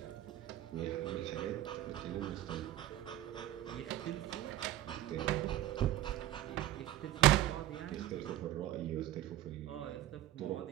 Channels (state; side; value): quieter; left; 13.8 dB